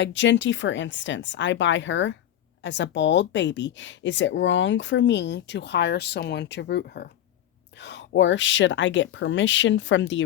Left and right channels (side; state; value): right; quieter; 11.5 dB